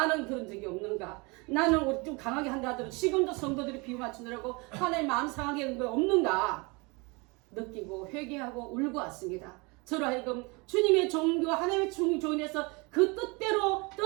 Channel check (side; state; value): left; quieter; 27.9 dB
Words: 그런 적이 없는가? 나는 좀 강하게 한다 하더라도 지금도 성도들이 비유 맞추느라고 하나님 마음 상하게 한 거 없는가? 느끼고 회개하고 울고 왔습니다. 저로 하여금 주님의 종교와 하나님의 종인에서 그 뜻대로